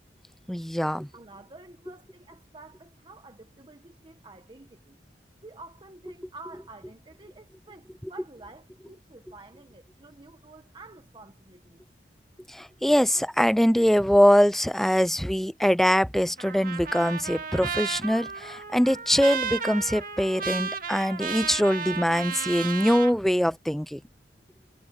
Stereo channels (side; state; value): both; normal; correlation 0.93